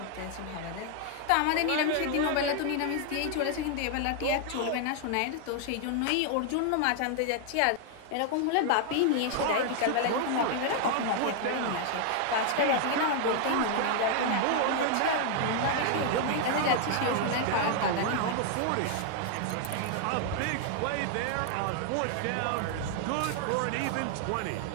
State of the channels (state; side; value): different; both; correlation 0.00